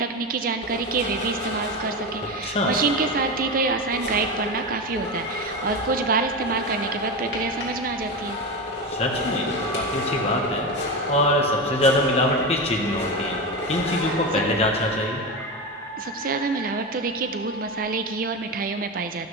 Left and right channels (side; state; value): both; normal; correlation 0.18